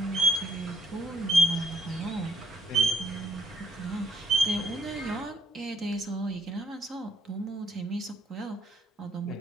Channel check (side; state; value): both; normal; correlation 0.68